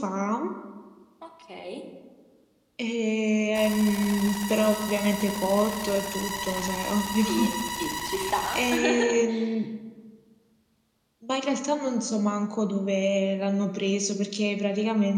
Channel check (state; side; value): identical; both; correlation 1.00